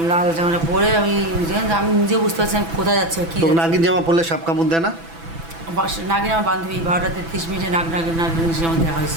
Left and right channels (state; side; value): late; left; 6.0 ms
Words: লাল জামাটা পরে আমি নিজে বুঝতে পারছি আমি কোথায় যাচ্ছি কি তো নাগিন জামা পরলে সাপ কামড় দেয় না? নাগিন আমার বান্ধবী 12:33 নাগিনের সঙ্গে দেখা